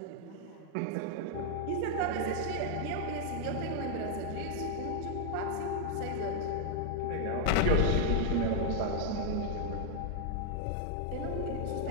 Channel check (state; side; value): different; both; correlation 0.00